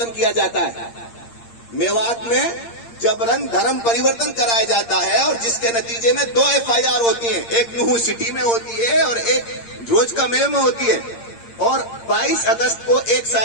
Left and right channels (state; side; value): late; right; 8.7 ms